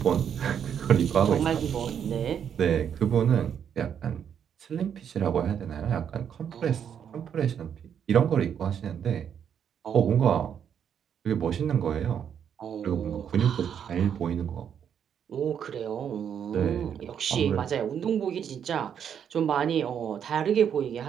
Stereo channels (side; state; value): left; quieter; 8.4 dB